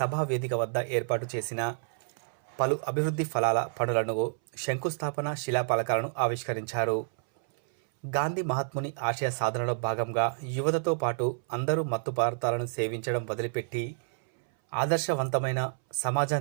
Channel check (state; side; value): silent; left; 58 dB below the other